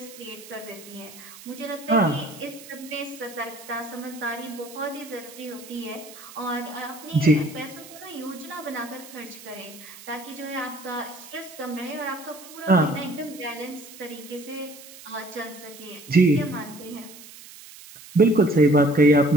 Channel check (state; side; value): noise; right; hiss, 17 dB below the sound